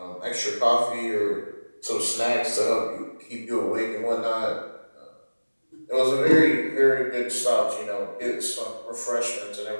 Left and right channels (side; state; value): both; inverted; correlation -1.00